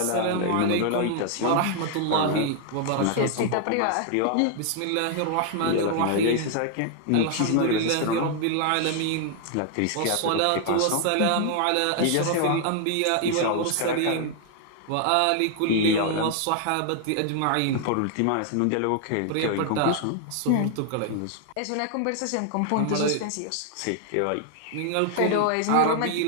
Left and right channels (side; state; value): both; different; correlation 0.00